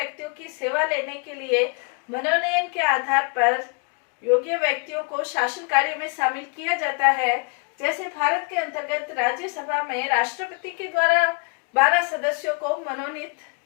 की सेवा लेने के लिए मनोनयन के आधार पर योग्य व्यक्तियों को शासन कार्य में शामिल किया जाता है। जैसे भारत के अंतर्गत राज्यसभा में राष्ट्रपति के द्वारा 12 सदस्यों को मनोनीत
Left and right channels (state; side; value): quieter; right; 34.7 dB